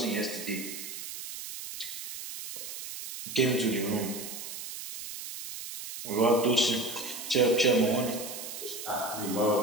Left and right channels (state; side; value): noise; right; hiss, 9 dB below the sound